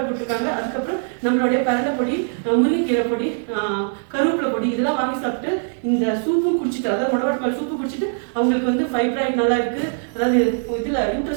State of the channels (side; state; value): left; silent; 65 dB below the other